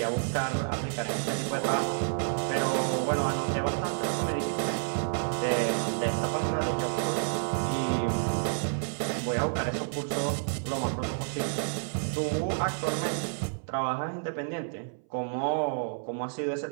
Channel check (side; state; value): left; silent; 58 dB below the other